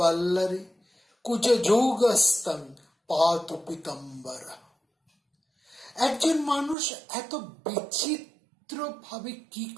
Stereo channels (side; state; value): left; drops out; at 6.8 s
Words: কুজ যৌগস্তং পাতু পিতম্বরা। একজন মানুষ এত বিচিত্র ভাবে কি